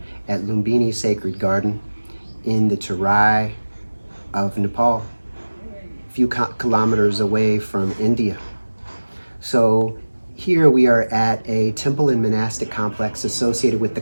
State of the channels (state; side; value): inverted; both; correlation -1.00